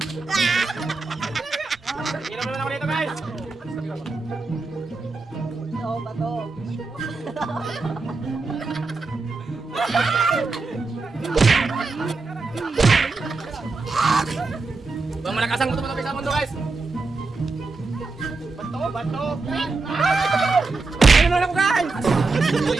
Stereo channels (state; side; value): quieter; left; 3.9 dB